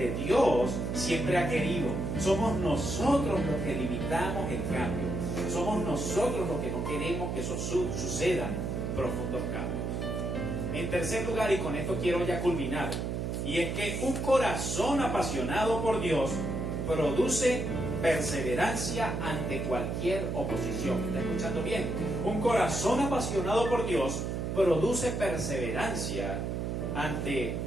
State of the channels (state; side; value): noise; right; hum, 2 dB below the sound